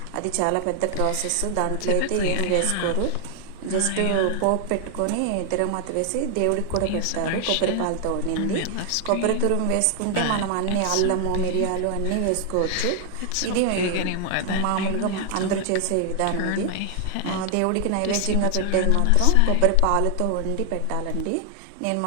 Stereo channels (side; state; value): both; different; correlation 0.00